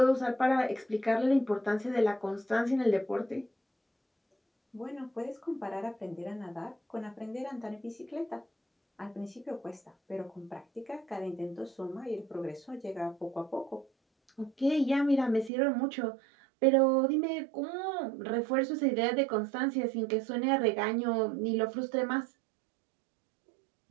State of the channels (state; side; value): drops out; left; at 15.5 s